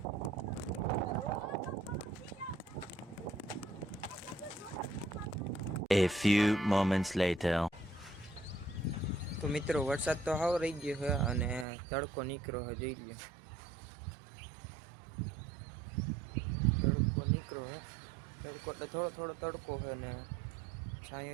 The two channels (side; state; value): left; drops out; at 11.7 s